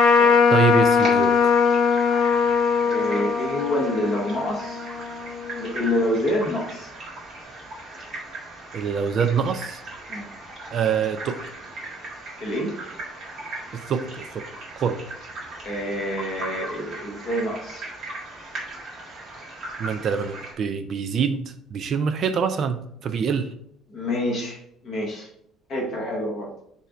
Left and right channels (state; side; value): normal; both; correlation 0.60